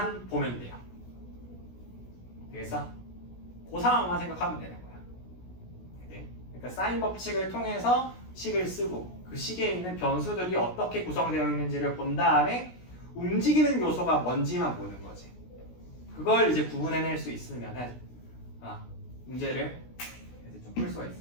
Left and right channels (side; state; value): right; late; 16 ms